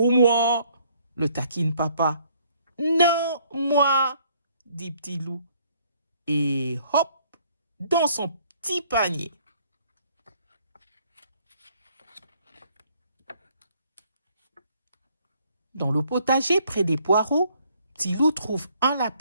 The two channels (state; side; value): inverted; both; correlation -0.64